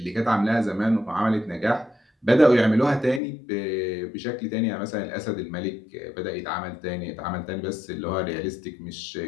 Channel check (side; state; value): right; drops out; at 3.2 s